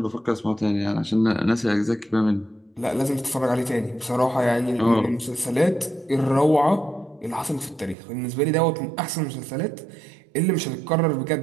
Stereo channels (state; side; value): drops out; left; at 8.0 s